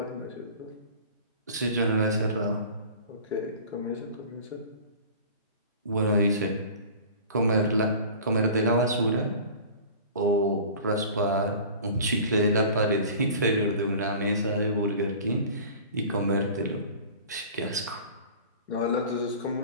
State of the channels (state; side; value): inverted; both; correlation -0.41